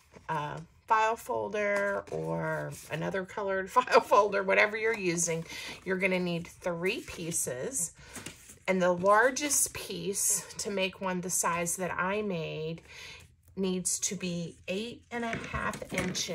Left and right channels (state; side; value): identical; both; correlation 1.00